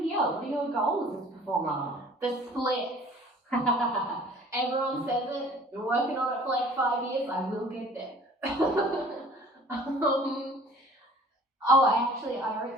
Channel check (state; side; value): normal; both; correlation 0.51